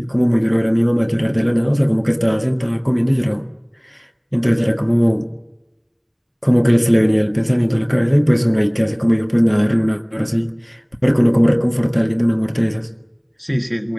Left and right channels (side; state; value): both; identical; correlation 1.00